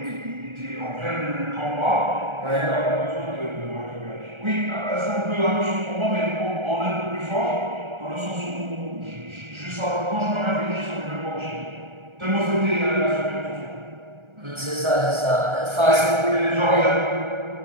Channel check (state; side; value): late; left; 1.4 ms